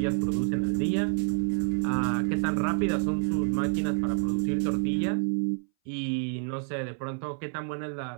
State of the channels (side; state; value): left; silent; 59 dB below the other